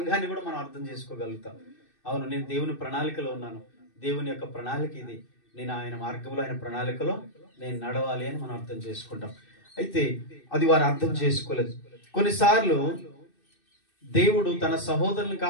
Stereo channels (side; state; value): right; late; 2.6 ms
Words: కూడా మనం అర్థం చేసుకోగలుగుతాం. అవును, నేను దేవుని ప్రణాళికలో ఉన్నాను, దేవుని యొక్క ప్రణాళిక ఇది, నేను ఆయన మార్గంలో, ఆయన ప్రణాళికలో నేను నడవాలి అని మనం అర్థం చేసుకుంటాం. అయితే అది వారు అర్థం చేసుకోలేదు. కొన్నిసార్లు దేవుడు తన సహోదరులను